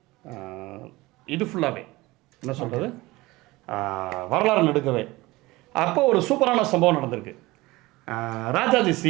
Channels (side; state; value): left; quieter; 20.4 dB